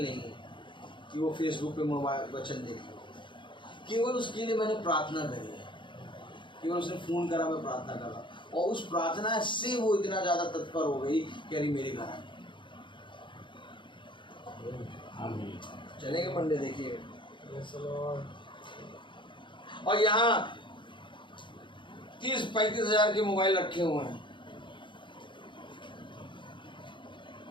नहीं है कि वो फेसबुक पे मोबाइल वचन देखे। केवल उसके लिए मैंने प्रार्थना करी है, केवल उसने फोन करा, मैं प्रार्थना करा, और उस प्रार्थना से वो इतना ज्यादा तत्पर हो गई कि अरे मेरे घर आए। चलेंगे मंडे देखिए। और यहाँ 30-35 हजार के मोबाइल रखे हुए हैं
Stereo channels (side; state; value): right; late; 0.23 ms